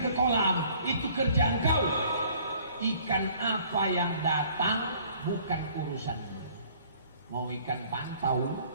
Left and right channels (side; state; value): both; inverted; correlation -0.56